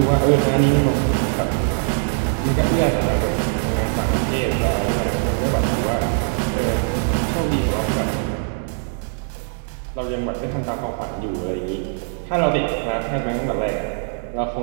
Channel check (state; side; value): silent; left; 65 dB below the other